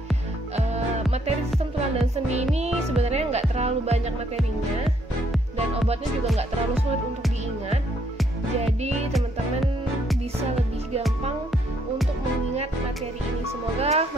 Materi sistem tulang dan sendi ini sebenarnya nggak terlalu banyak materinya, dan obatnya juga nggak terlalu sulit untuk diingat. Jadi teman-teman bisa lebih gampang untuk mengingat materi ini. Semoga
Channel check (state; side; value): normal; both; correlation 0.70